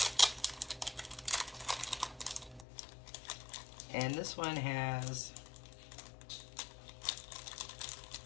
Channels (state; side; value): drops out; right; at 2.7 s